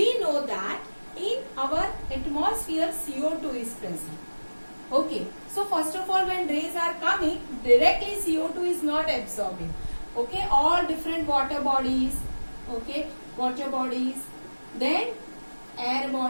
know that in our atmosphere CO2 is present. Okay, so first of all, when rays are coming, directly CO2 is not absorbing. Okay, all different water bodies, then air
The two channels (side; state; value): both; inverted; correlation -1.00